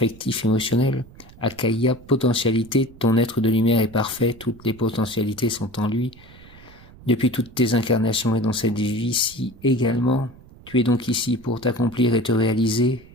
émotionnel. Akaya, potentialité, ton être de lumière est parfait, toutes les potentialités sont en lui. Depuis toutes tes incarnations et dans cette vie-ci également, tu es donc ici pour t'accomplir et te réaliser.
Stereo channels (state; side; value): noise; right; rumble, 22 dB below the sound